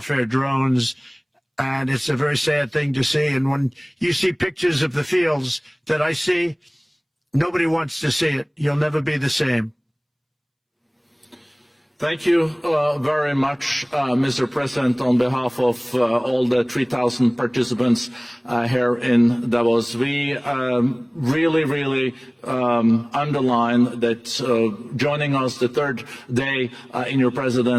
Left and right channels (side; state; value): both; identical; correlation 1.00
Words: drones. And it's a very sad thing to see. And when you see pictures of the fields that I see, nobody wants to see it. You'll never be the same. Thank you very much, Mr. President, on behalf of all the 3,000 participants here in Davos. We really underline that joining us the third day in your